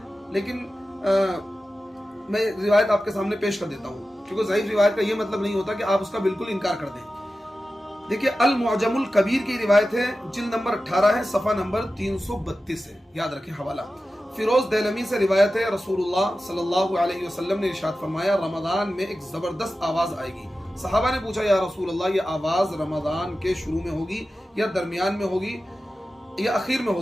लेकिन मैं रिवायत आपके सामने पेश कर देता हूँ, क्योंकि ज़ईफ रिवायत का ये मतलब नहीं होता कि आप उसका बिल्कुल इनकार कर दें। देखिए, अल मुअजमुल कबीर की रिवायत है, जिल्द नंबर 18 है, सफ़ा नंबर 332 है, याद रखें हवाला। फिरोज देलमी से रिवायत है, रसूलुल्लाह सल्लल्लाहु अलैहि वसल्लम ने इरशाद फरमाया, रमजान में एक जबरदस्त आवाज आएगी। सहाबा ने पूछा, या रसूलल्लाह, ये आवाज रमजान के शुरू में होगी या दरमियान में होगी या आखिर में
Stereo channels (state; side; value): normal; both; correlation 0.94